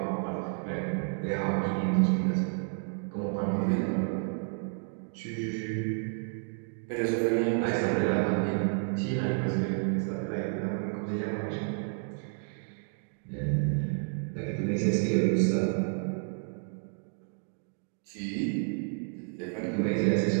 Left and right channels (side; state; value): left; silent; 57 dB below the other